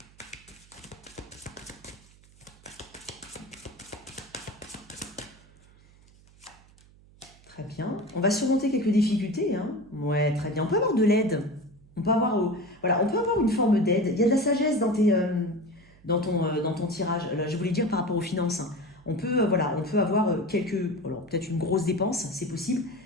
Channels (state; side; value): noise; right; hum, 26 dB below the sound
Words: Très bien. On va surmonter quelques difficultés. Hein. Ouais, très bien. On peut avoir de l'aide. On peut avoir, voilà, on peut avoir une forme d'aide. Il y a de la sagesse dans ton tirage. Là, je voulais dire par rapport aux finances. Hein. On peut avoir peut-être une grosse dépense, c'est possible.